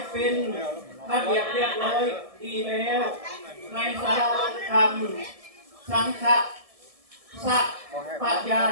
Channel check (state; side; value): late; left; 1.7 ms